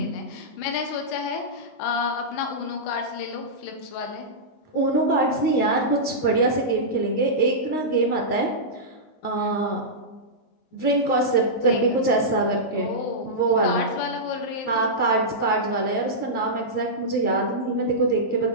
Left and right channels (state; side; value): late; right; 19 ms